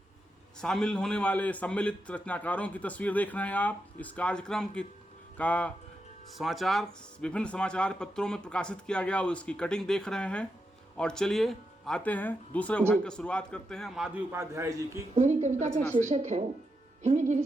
शामिल होने वाले सम्मिलित रचनाकारों की तस्वीर देख रहे हैं आप। इस कार्यक्रम का समाचार विभिन्न समाचार पत्रों में प्रकाशित किया गया, उसकी कटिंग देख रहे हैं। और चलिए आते हैं दूसरे भाग की शुरुआत करते हैं माधवी उपाध्याय जी की। मेरी कविता का शीर्षक है हिमगिरि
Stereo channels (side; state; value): both; normal; correlation 0.85